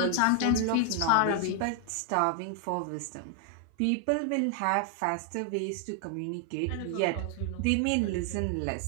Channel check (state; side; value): different; both; correlation 0.00